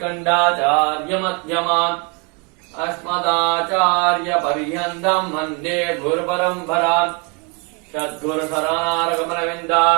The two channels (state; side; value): quieter; left; 32.7 dB